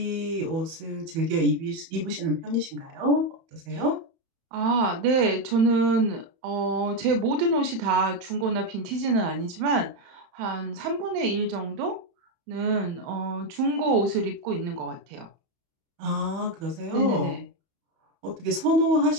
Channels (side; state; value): left; late; 31 ms